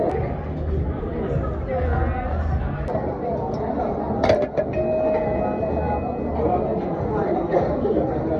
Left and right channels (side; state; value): both; identical; correlation 1.00